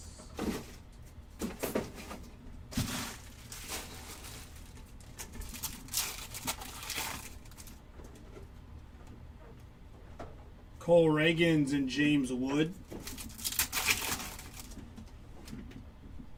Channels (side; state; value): both; identical; correlation 1.00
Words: Cole Reagans and James Wood.